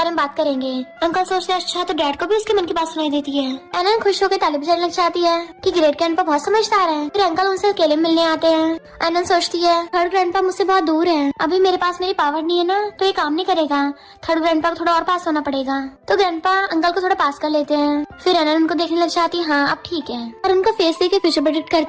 में बात करेंगे। अंकल सोचते हैं अच्छा तो डैड को भी उसके मन की बात सुनाई देती है। एनन खुश होकर ताली बजाने लग जाती है कि ग्रेट ग्रैंडपा बहुत समझदार है। फिर अंकल उनसे अकेले मिलने आते हैं। एनन सोचती है थर्ड ग्रैंडपा मुझसे बहुत दूर है, अभी मेरे पास मेरी पावर नहीं है ना तो ये काम नहीं करेगा, थर्ड ग्रैंडपा को थोड़ा और पास होना पड़ेगा। तो ग्रैंडपा अंकल को थोड़ा पास कर लेते हैं। फिर एनन उनको देखने लग जाती है हाँ अब ठीक है, और उनका फेस देख के फ्यूचर प्रेडिक्ट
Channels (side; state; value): both; identical; correlation 1.00